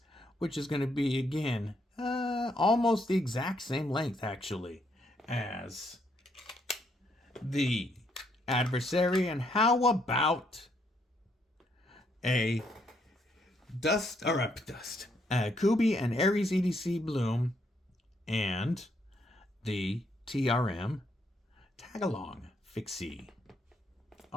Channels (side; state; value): both; normal; correlation 0.73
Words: which is going to be, again, almost the exact same length, actually, as the Adversary. And how about a Kubi and Aries EDC Bloom and the TRM Tagalong Fixie.